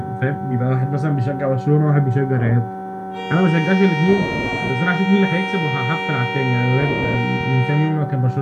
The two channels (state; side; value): identical; both; correlation 1.00